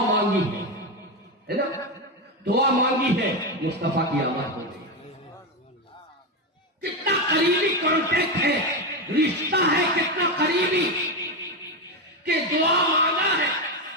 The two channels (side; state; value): both; normal; correlation 0.12